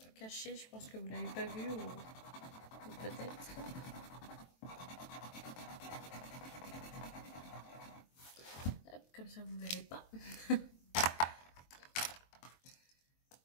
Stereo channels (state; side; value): late; right; 23 ms